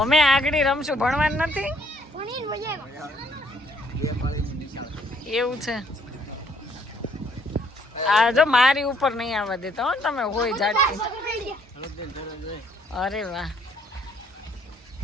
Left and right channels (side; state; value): both; normal; correlation 0.66